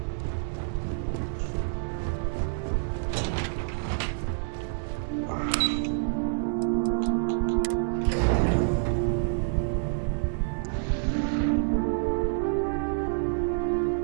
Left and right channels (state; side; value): silent; left; 59 dB below the other